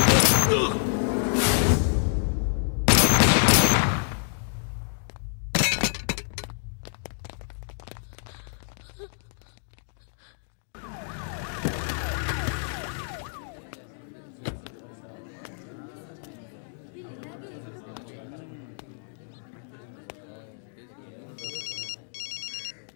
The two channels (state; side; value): silent; right; digital silence